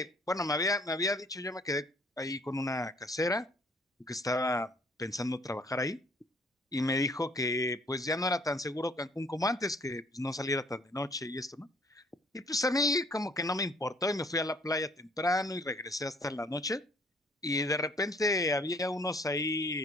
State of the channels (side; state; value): both; normal; correlation 0.60